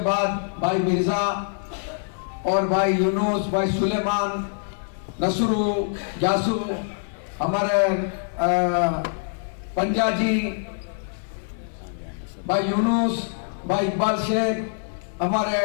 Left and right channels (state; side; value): silent; right; 61 dB below the other